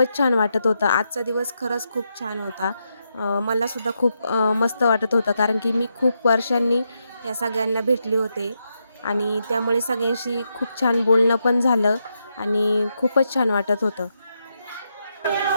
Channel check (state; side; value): inverted; both; correlation -0.83